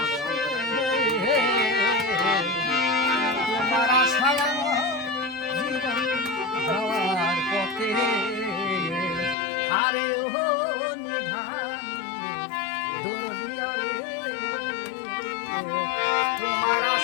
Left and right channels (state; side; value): drops out; right; at 9.3 s